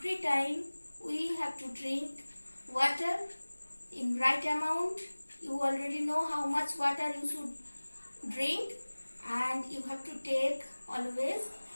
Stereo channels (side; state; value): both; inverted; correlation -1.00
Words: time we have to drink water in right amount. You already know how much water you should drink, and you have to take always